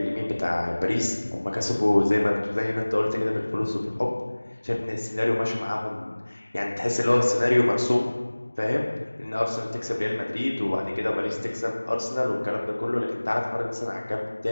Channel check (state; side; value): inverted; both; correlation -1.00